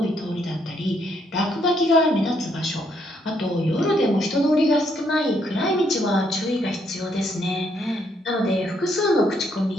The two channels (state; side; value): normal; both; correlation 0.72